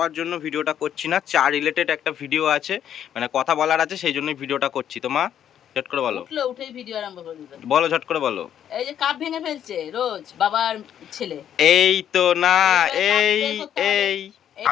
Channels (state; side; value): quieter; right; 9.8 dB